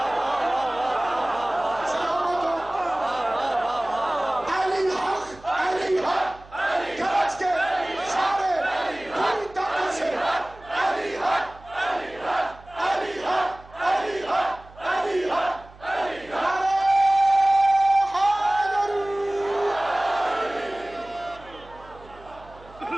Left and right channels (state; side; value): noise; right; hum, 22 dB below the sound